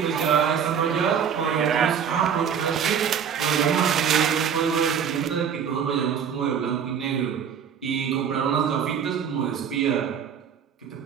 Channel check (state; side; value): quieter; left; 7.7 dB